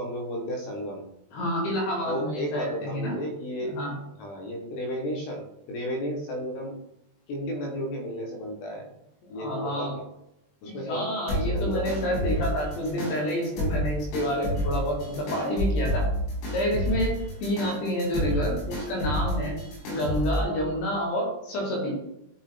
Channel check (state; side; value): late; right; 20 ms